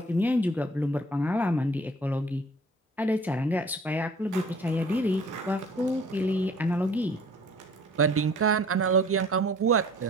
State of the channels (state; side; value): normal; both; correlation 0.51